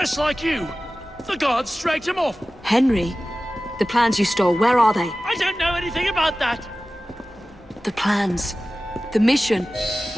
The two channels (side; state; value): both; normal; correlation 0.96